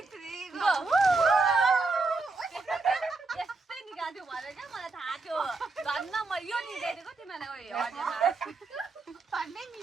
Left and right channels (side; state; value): left; quieter; 3.8 dB